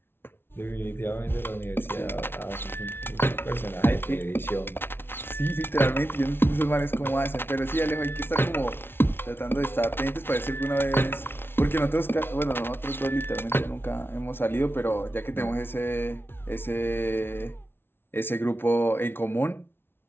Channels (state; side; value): late; right; 0.11 ms